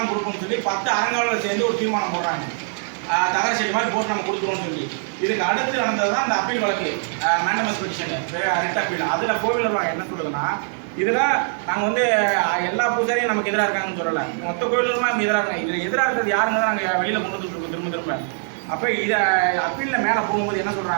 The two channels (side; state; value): left; silent; 64 dB below the other